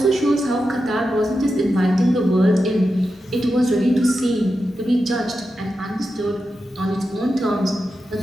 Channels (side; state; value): both; normal; correlation 0.90